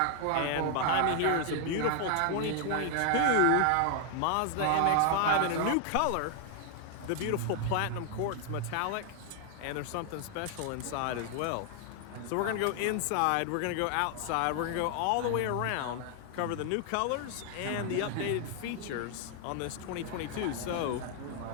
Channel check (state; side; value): different; both; correlation 0.00